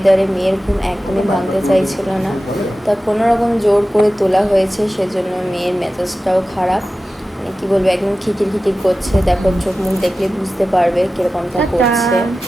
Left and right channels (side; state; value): both; normal; correlation 0.95